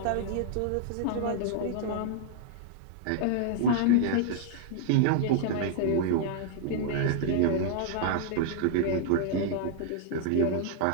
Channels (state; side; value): different; both; correlation -0.01